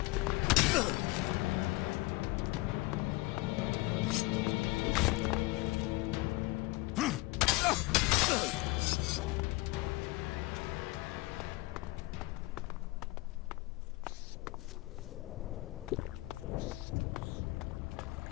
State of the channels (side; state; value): right; quieter; 22.0 dB